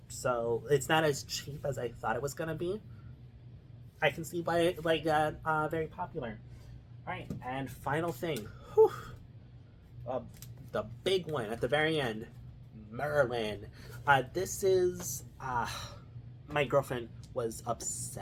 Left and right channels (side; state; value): both; identical; correlation 1.00